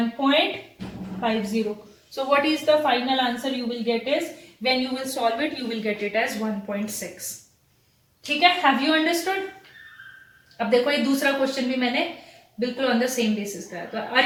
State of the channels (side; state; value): both; identical; correlation 1.00